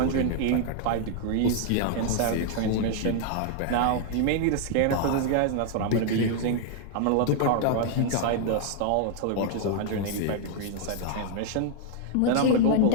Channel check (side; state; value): both; different; correlation 0.00